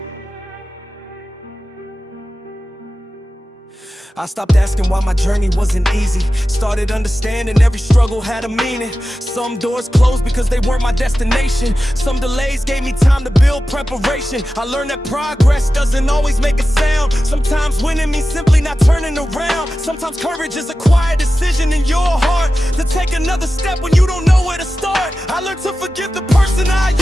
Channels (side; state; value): both; normal; correlation 0.94